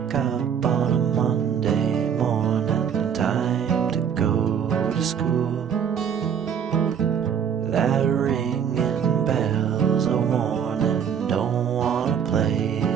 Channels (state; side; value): quieter; left; 7.9 dB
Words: up on a Monday morning, time to go to school. That ringing bell's a warning, don't wanna play